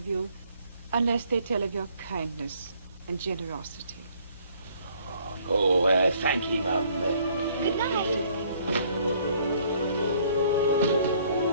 you unless they tell of your kindness and generosity. Oh, thank you, Mum. Good night.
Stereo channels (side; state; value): both; inverted; correlation -0.62